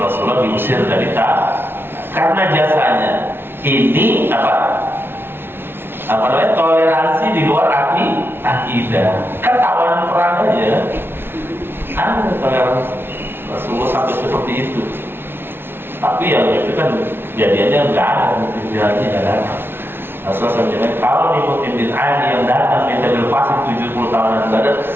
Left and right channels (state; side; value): late; left; 0.11 ms